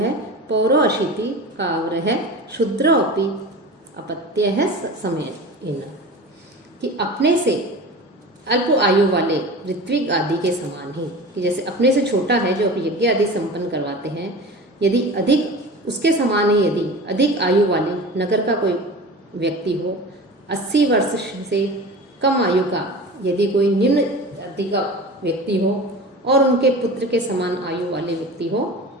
पौरो अशीति काव्र है शूद्र अपि अपत्य है समय, कि अपने से अल्प आयु वाले ऋत्विक आदि के समान ही, कि जैसे अपने से छोटा है जो यज्ञ आदि संपन्न करवाते हैं, यदि अधिक उसके समान ही यदि अधिक आयु वाले नगर का कोई व्यक्ति हो, 80 वर्ष से कम आयु का यदि कोई निम्न जाति का व्यक्ति हो और उनके पुत्र के समान आयु वाले व्यक्ति हो,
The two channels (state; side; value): normal; both; correlation 0.34